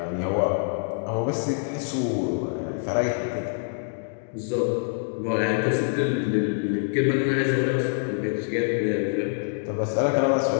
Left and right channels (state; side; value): silent; right; 61 dB below the other